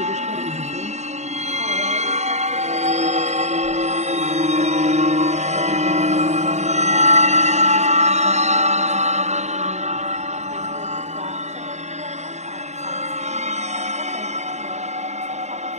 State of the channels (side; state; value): left; late; 0.33 ms